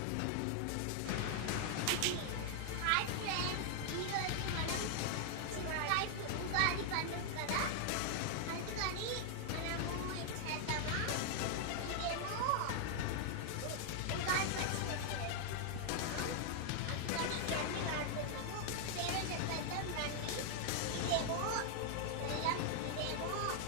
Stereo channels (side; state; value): both; different; correlation 0.00